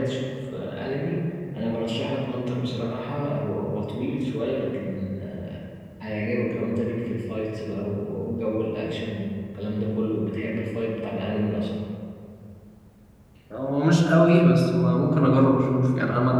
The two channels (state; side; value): identical; both; correlation 1.00